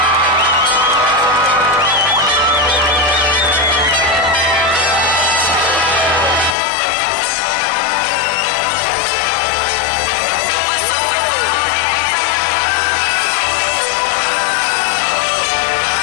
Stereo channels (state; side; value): drops out; right; at 6.6 s